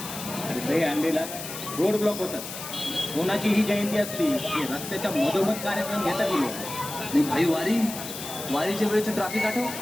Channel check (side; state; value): left; noise; hiss, 9 dB below the sound